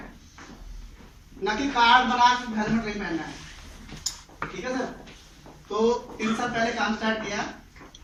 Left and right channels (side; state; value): both; identical; correlation 1.00